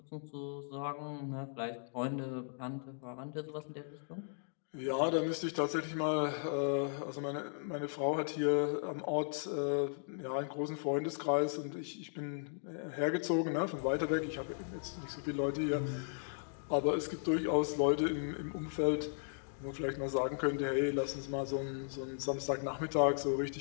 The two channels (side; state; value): right; silent; digital silence